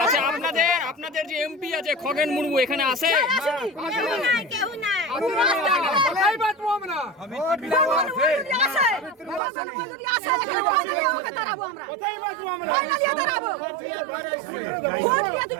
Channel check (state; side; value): drops out; left; at 9.4 s